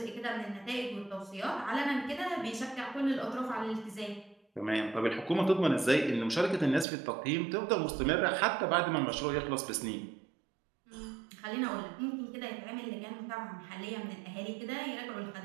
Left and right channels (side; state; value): left; drops out; at 6.9 s